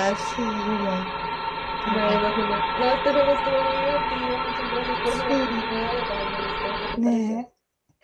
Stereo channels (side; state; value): both; identical; correlation 1.00